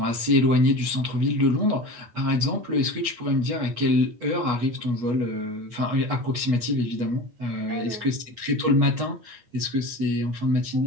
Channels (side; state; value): left; late; 8.3 ms